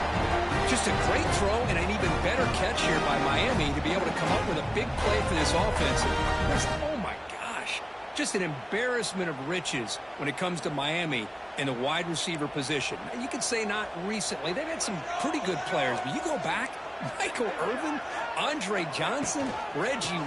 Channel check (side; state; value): both; identical; correlation 1.00